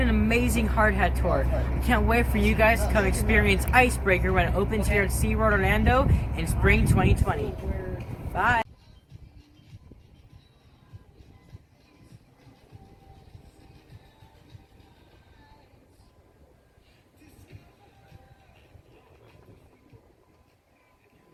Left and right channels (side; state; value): both; identical; correlation 1.00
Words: amazing hard hat tour. I can't wait for you guys to come experience Icebreaker when it opens here at SeaWorld Orlando in spring 2020. Bye.